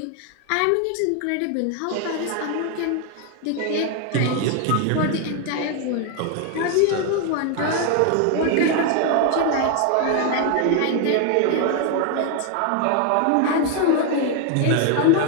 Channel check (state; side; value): different; both; correlation 0.01